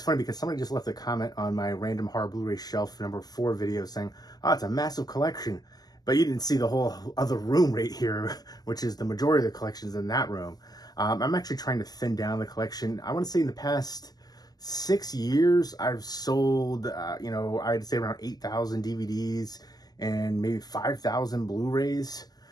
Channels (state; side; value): late; right; 0.19 ms